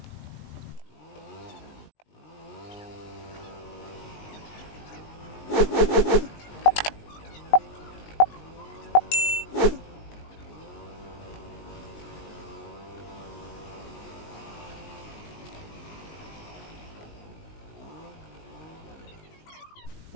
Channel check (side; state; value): right; late; 19 ms